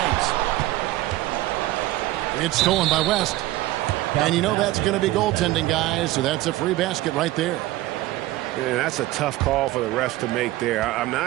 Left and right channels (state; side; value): quieter; left; 17.0 dB